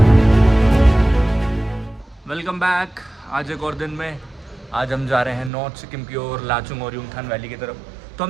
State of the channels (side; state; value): left; drops out; at 5.5 s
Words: Welcome back. आज एक और दिन में आज हम जा रहे हैं नॉर्थ सिक्किम की ओर, लाचुंग और युमथांग वैली की तरफ। तो